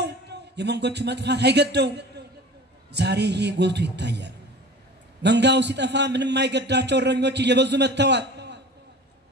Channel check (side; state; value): both; normal; correlation 0.40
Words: የመንጎቹ መጥፋት አይገደው። ዛሬ ይሄ ጎልቶ ይታያል። መንጋው ሲጠፋ ምንም አይገዳቸው እረኞች እየበዙ መጥተዋል።